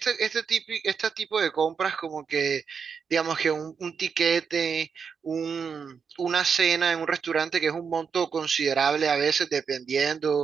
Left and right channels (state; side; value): quieter; left; 6.2 dB